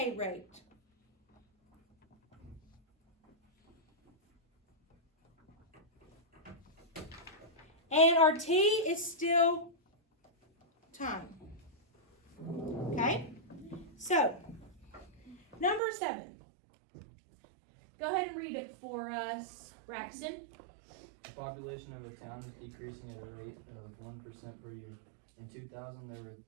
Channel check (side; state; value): left; drops out; at 15.8 s